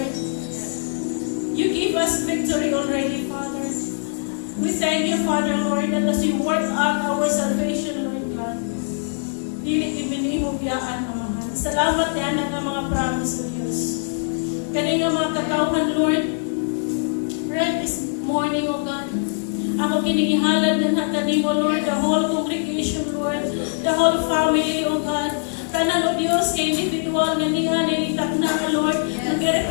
You give us victory already, Father. We thank you, Father, Lord, that as you work out our salvation, Lord God, dili ibinihog yaan, Amahan. Salamat yan ang mga promise of Diyos. Kani nga mga kakauhan, Lord, right this morning, O God, ako kinigihalad ng kanimo, Lord, the whole congregation, Lord, the whole family, O God. Tanan, O Diyos, kay individual na niya, nilitak na, Lord,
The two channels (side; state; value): right; silent; digital silence